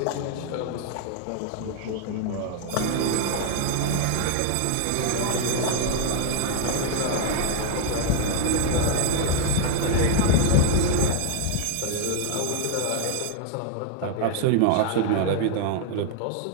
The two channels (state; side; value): different; both; correlation 0.00